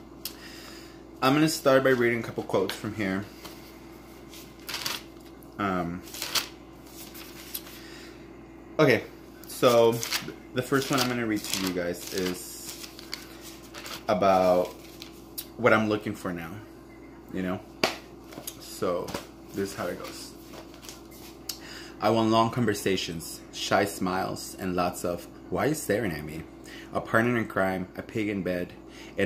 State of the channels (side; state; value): both; identical; correlation 1.00